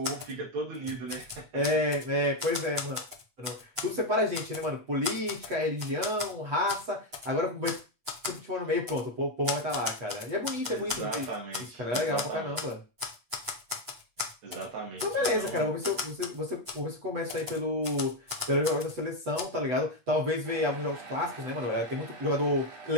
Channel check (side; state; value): left; late; 8.0 ms